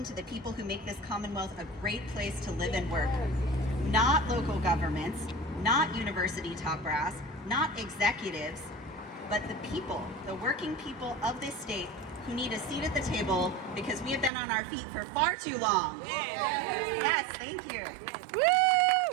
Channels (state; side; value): drops out; left; at 14.3 s